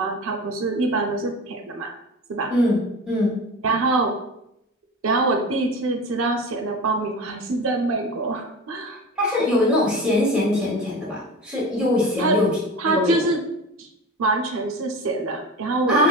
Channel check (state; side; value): normal; both; correlation 0.31